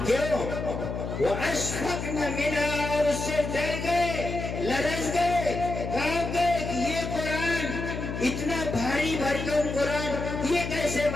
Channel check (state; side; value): noise; left; hum, 5 dB below the sound